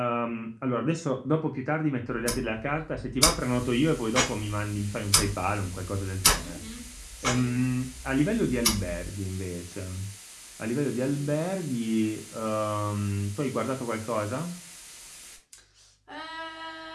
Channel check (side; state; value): both; identical; correlation 1.00